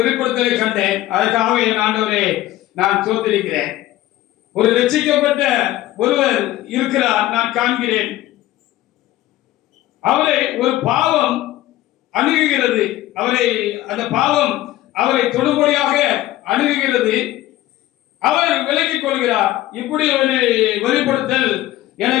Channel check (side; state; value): right; quieter; 15.3 dB